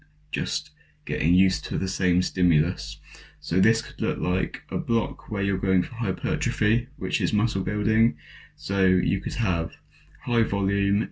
just getting used to the same stimulus. So this could look like a block where you're going for hypertrophy, which is muscle building. So you could have high volume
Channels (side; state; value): both; identical; correlation 1.00